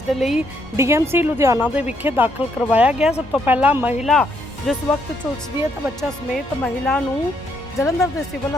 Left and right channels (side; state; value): both; normal; correlation 0.73